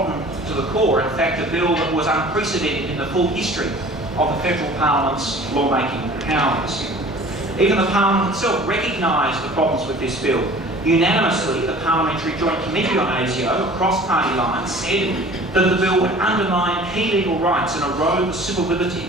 to the core, in fact a bill that was unprecedented in the full history of the federal parliament's lawmaking powers. Even the parliament itself recognised the problems with this bill. Unanimously, the Parliamentary Joint Committee on ASIO, across party lines, said that the bill would undermine key legal rights and erode the civil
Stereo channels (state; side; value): normal; both; correlation 0.46